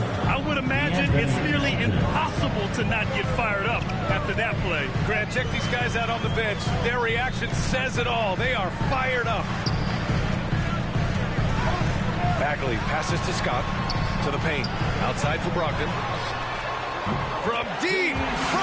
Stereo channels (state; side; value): identical; both; correlation 1.00